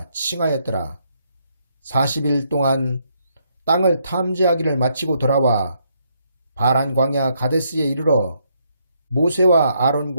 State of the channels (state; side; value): inverted; both; correlation -0.74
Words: 칭하였더라. 40일 동안 땅을 탐지하기를 마치고 돌아와 바란 광야 가데스에 이르러 모세와